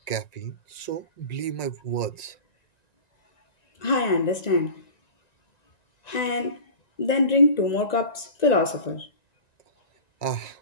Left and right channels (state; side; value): late; right; 1.9 ms